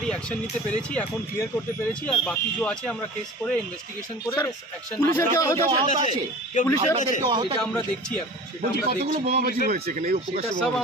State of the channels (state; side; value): normal; both; correlation 0.39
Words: অ্যাকশন নিতে পেরেছি, এখন ক্লিয়ার করতে পেরেছি, আর বাকি যে আছে আমরা কেস করে ইনভেস্টিগেশন করে অ্যাকশন এটা আমরা দেখছি। এখন কতগুলো বোমাবাজি হয়েছে এখানে? সব